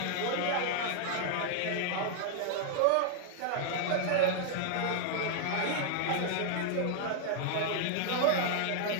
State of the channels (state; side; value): different; both; correlation -0.01